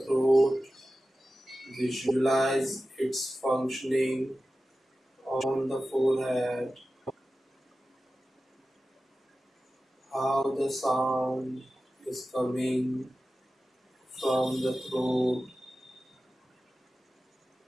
throat. Visualize its functioning on the forehead. How the sound is coming from the throat.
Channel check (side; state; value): both; normal; correlation 0.94